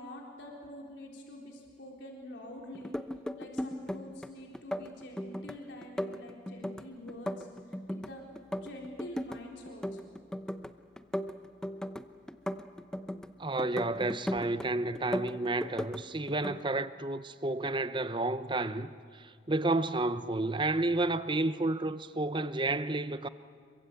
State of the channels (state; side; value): normal; both; correlation 0.55